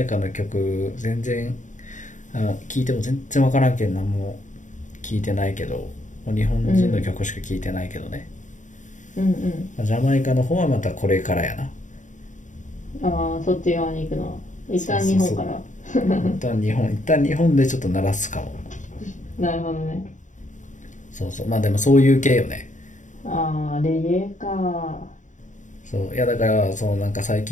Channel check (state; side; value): late; right; 0.36 ms